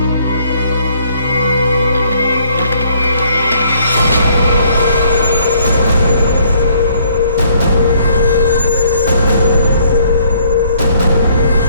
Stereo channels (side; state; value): both; inverted; correlation -0.64